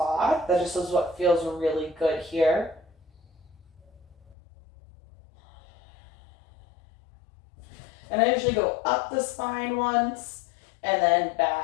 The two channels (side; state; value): right; drops out; at 4.4 s